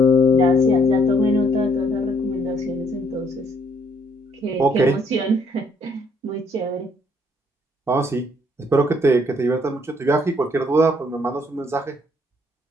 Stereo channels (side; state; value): both; normal; correlation 0.66